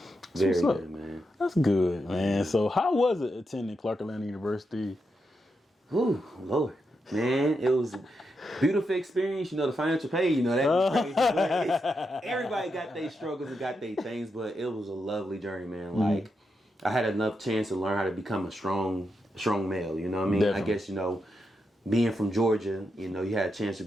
Very good, man. That's good, man. So how was it attending Clark Atlanta University? Whew, Lord. Man, it was a beautiful experience. You know, the financial pay, you know, that was crazy. But everybody got their struggles and got their things, but it was a lovely journey, man. Mm-hmm. Like, I had enough chance to learn how to become a strong male, you know what I mean? Definitely. I guess, you know, being from Georgia, you know, you had a chance to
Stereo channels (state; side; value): normal; both; correlation 0.85